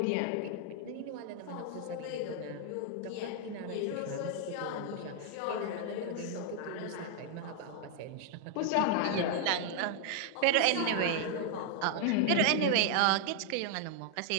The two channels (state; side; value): different; both; correlation 0.00